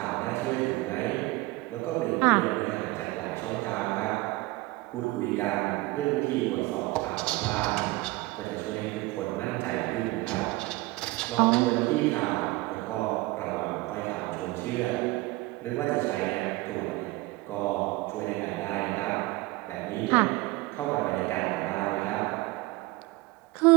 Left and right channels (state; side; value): quieter; left; 20.8 dB